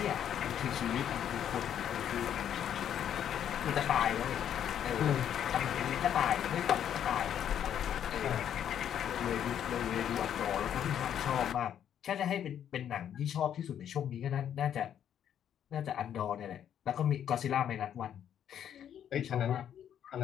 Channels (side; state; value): right; quieter; 9.6 dB